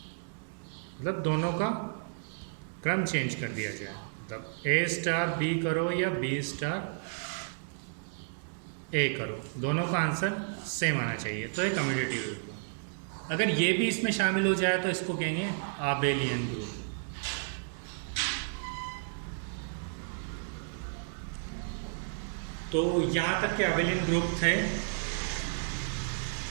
मतलब दोनों का क्रम चेंज कर दिया जाए। मतलब ए स्टार बी करो या बी स्टार ए करो, दोनों का आंसर सेम आना चाहिए, तो ये कम्यूटेटिव ग्रुप। अगर ये भी इसमें शामिल हो जाए तो इसको कहेंगे आबेलियन ग्रुप। तो यहाँ तक के आबेलियन ग्रुप थे।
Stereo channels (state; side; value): silent; left; digital silence